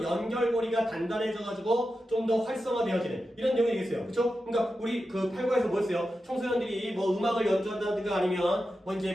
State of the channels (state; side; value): normal; both; correlation 0.90